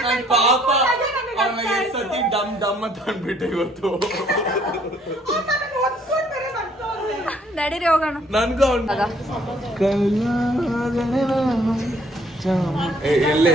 ಪಾಪ ಸತಿ ಡಮ್ ಡಮ್ ಅಂತ ಅಂದ್ಬಿಟ್ಟೆ ಇವತ್ತು. ನಡೀರಿ ಹೋಗೋಣ. ನನ್ಗೂ ಎಲ್ಲೇ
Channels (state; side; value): normal; both; correlation 0.63